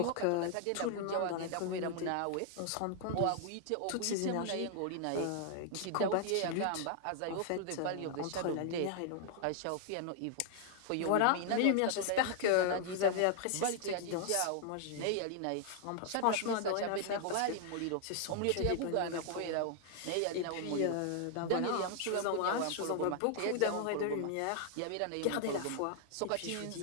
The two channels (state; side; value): different; both; correlation 0.00